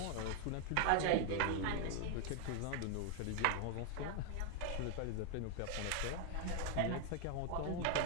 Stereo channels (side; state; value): both; different; correlation 0.00